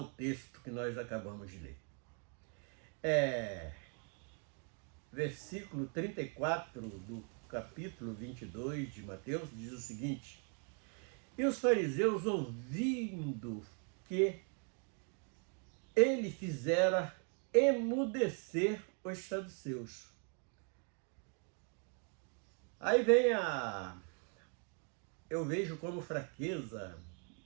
texto que nós acabamos de ler. Versículo 34 do capítulo 22 de Mateus diz o seguinte: e os fariseus, ouvindo que ele fizera emudecer os saduceus. Aí vem eu vejo como fraqueza,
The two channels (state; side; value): quieter; left; 38.8 dB